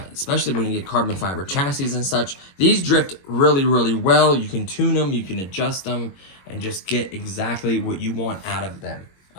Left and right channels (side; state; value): right; late; 21 ms